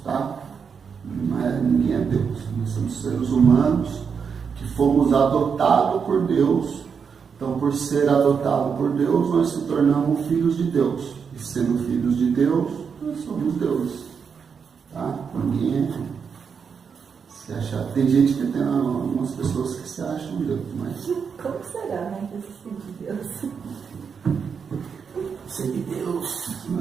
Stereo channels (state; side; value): quieter; left; 6.3 dB